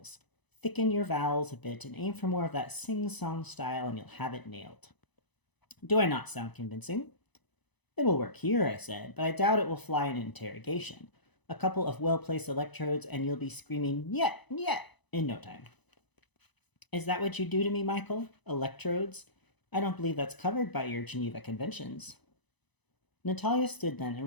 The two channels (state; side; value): late; right; 1.0 ms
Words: Thicken your vowels a bit and aim for more of that sing-song style and you'll have it nailed. Do I not sound convincing? It will work here, I said, but I doubt it will fly in an interrogation. A couple of well-placed electrodes and you'll be screaming, "Yet, yet," in no time. Is that what you do to me, Michael? Electrodes? I don't believe that's covered by your Geneva Conventions. Natalia stood then